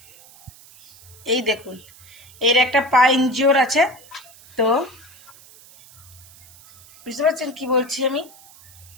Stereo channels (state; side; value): noise; right; hiss, 23 dB below the sound